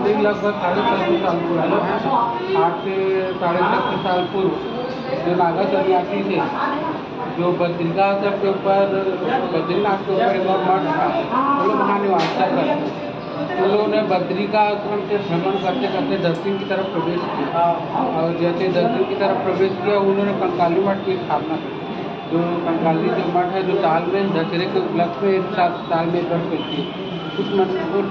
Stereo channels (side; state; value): both; identical; correlation 1.00